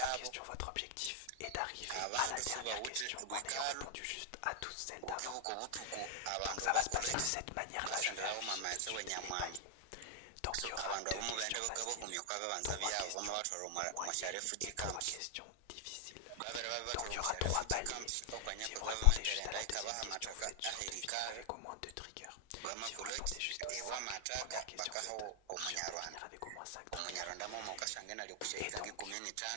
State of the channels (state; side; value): different; both; correlation 0.00